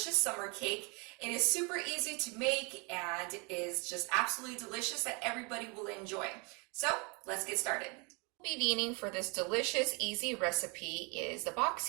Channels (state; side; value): quieter; left; 31.6 dB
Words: summer cake. It is super easy to make and is just absolutely delicious that everybody will enjoy. So let's get started. What we'll be needing for this delicious, easy recipe is the